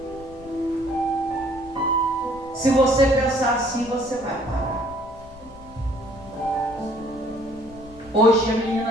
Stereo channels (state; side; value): noise; left; rumble, 20 dB below the sound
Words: Se você pensar assim, você vai parar. Hoje a